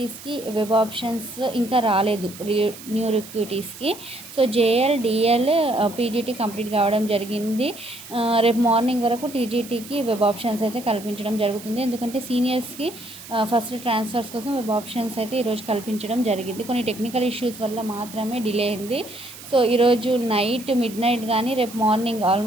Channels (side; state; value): right; noise; hiss, 16 dB below the sound